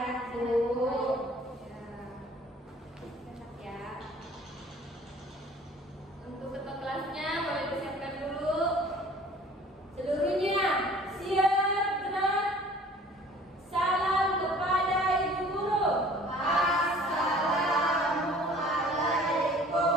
Bu. Sehat ya. Untuk ketua kelasnya boleh disiapkan dulu. Seluruhnya siap gerak. Salam kepada Ibu Guru.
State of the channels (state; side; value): normal; both; correlation 0.50